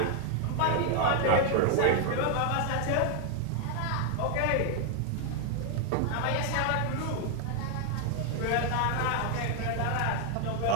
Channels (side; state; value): both; different; correlation 0.00